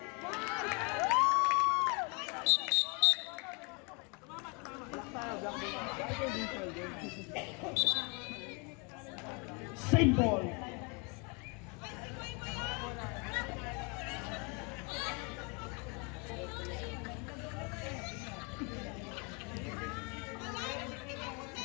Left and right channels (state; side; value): quieter; right; 32.6 dB